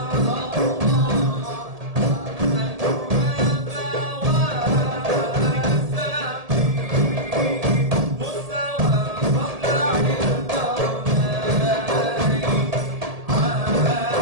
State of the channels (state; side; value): late; left; 1.7 ms